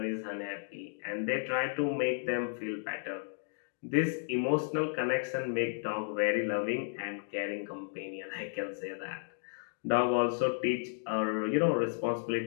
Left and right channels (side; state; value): right; silent; digital silence